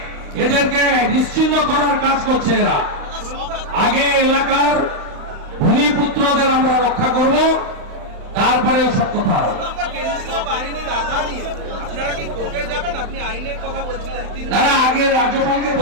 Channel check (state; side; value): late; left; 35 ms